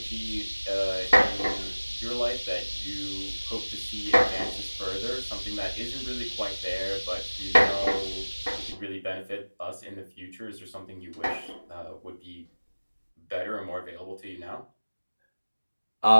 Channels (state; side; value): inverted; both; correlation -1.00